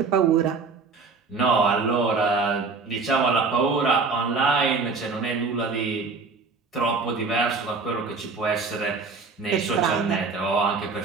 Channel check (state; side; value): quieter; left; 4.5 dB